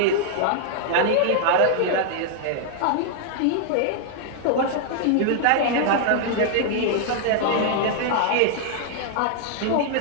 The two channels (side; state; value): both; different; correlation 0.00